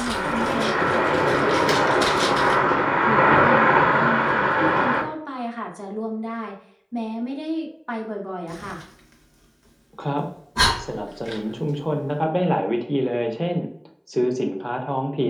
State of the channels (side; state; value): both; identical; correlation 1.00